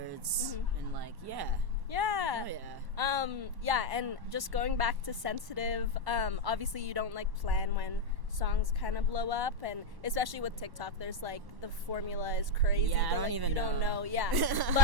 and like yeah. Yeah. Oh, yeah. Yeah, and just going back to Sensitive, obviously you don't like plan when songs kind of blow up, and especially with TikTok, there's like the formula is crazy. Yeah, but, I don't like, even you don't know. know. Yeah.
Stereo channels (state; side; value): late; left; 1.1 ms